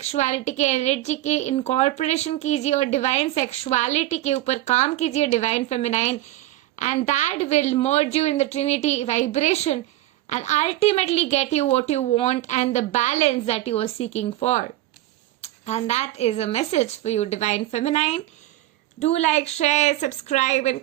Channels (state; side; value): quieter; left; 15.7 dB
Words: के एनर्जी की इनकॉर्पोरेशन कीजिए और डिवाइन सेक्सुअलिटी के ऊपर काम कीजिए, divine feminine, and that will merge you in the Trinity vibration and ultimately get you what you want and the balance that you are seeking for. And that is a message for you, Divine Feminine. Do like, share, subscribe and